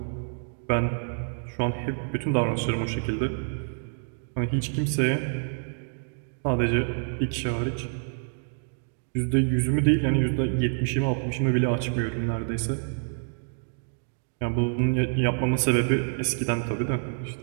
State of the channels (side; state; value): left; silent; digital silence